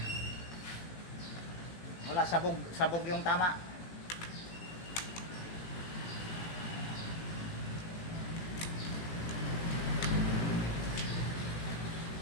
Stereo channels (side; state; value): right; late; 18 ms